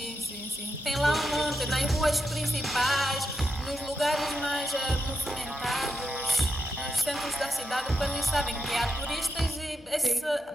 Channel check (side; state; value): both; normal; correlation 0.85